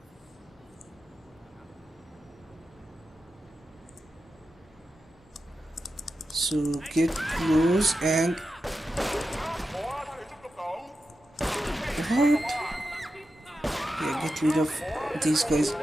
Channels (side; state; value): both; normal; correlation 0.90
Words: So get close and... What? Yeah, get rid of these guys.